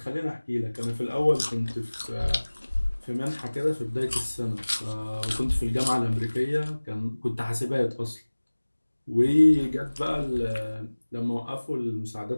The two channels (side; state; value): both; inverted; correlation -1.00